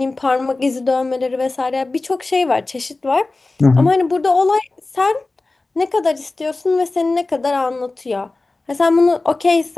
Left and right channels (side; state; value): right; quieter; 3.3 dB